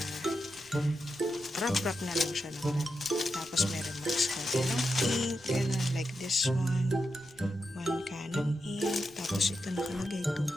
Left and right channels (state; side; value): noise; left; rumble, 27 dB below the sound